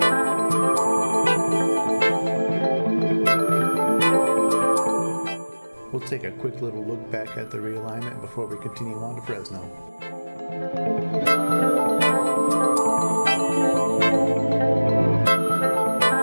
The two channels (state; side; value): inverted; both; correlation -1.00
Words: We'll take a quick little look back at the realignment before we continue on to Fresno.